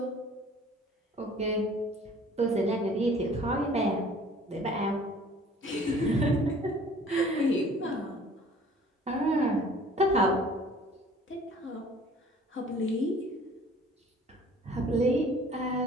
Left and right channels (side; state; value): both; normal; correlation 0.51